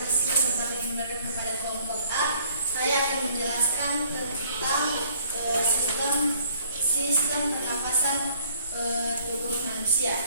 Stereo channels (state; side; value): inverted; both; correlation -0.60